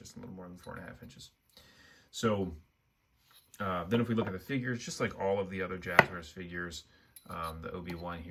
a little more than 4.5 inches. So then if we look at the figures, just like all of the other Jazwares figures, the Obi-Wan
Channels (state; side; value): identical; both; correlation 1.00